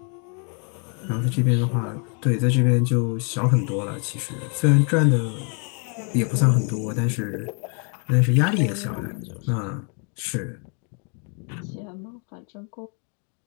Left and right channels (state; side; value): quieter; right; 39.1 dB